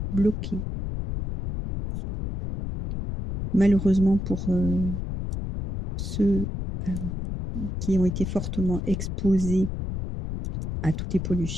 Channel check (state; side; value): noise; left; rumble, 4 dB below the sound